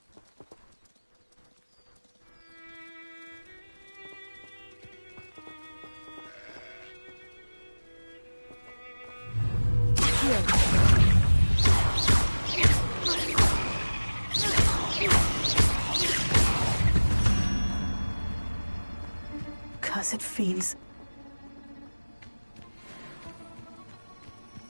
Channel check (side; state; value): both; inverted; correlation -1.00